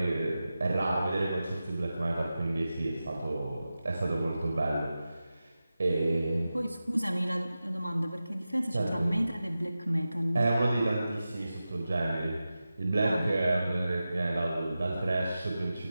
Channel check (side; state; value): both; inverted; correlation -0.93